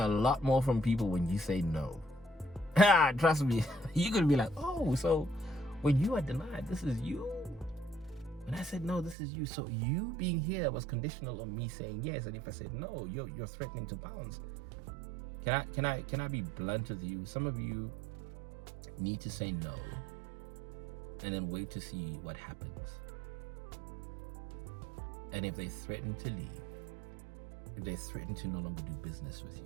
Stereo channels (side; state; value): left; drops out; at 9.2 s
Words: lot more from people when you say no. Trust me. You're going to be like, oh, so when you are denied, this is you? When I said no, this is you. So you being here was conditional on me saying yes. And if I said no, you're threatening to bounce. Can I be blunt with you? Some of you need to say no and then wait to see what happens. And if they threaten to leave, if they threaten to no longer do business with you,